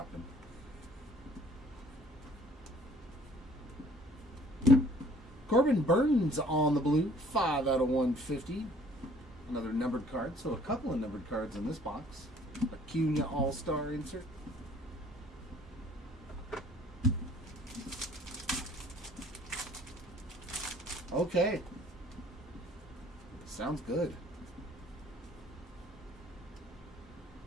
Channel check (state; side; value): normal; both; correlation 0.56